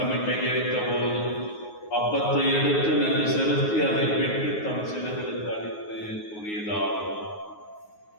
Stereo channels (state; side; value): late; right; 9.5 ms